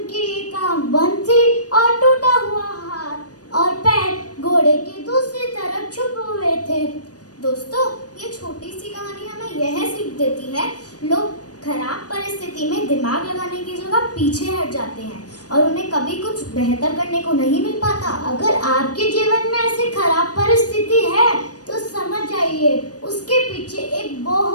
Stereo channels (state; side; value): late; right; 0.68 ms